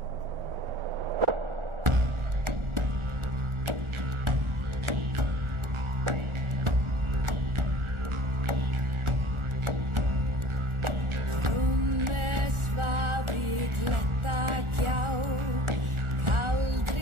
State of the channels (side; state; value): left; late; 1.4 ms